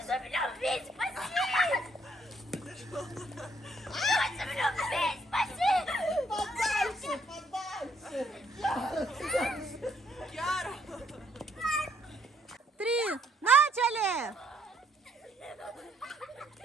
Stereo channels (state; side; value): normal; both; correlation 0.69